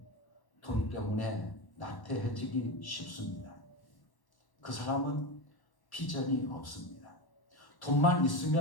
돈 때문에 나태해지기 쉽습니다. 그 사람은 비전이 없습니다. 돈만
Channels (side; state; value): right; late; 1.1 ms